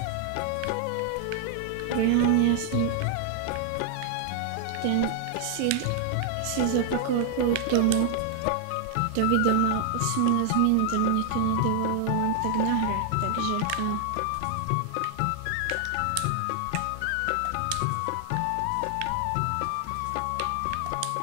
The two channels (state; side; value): different; both; correlation 0.00